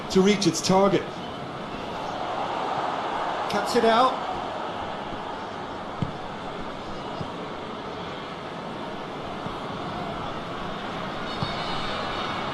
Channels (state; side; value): identical; both; correlation 1.00